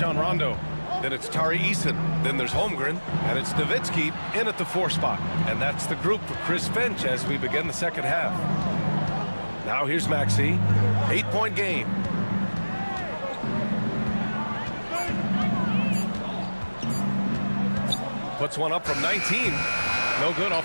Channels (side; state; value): both; inverted; correlation -1.00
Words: Rondo. Then it's Tari Eason. Then there's Holmgren. And it's Nowitzki in at the 4 spot. And that's the group for Chris Finch as we begin the second half. Now here's Maxey. 8-point game. Puts one up from 19. No good